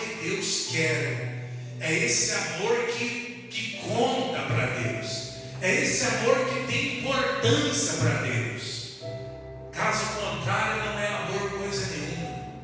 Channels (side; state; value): both; identical; correlation 1.00